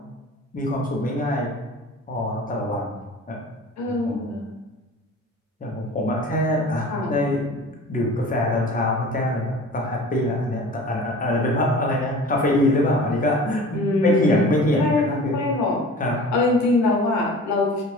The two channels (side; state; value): both; normal; correlation 0.41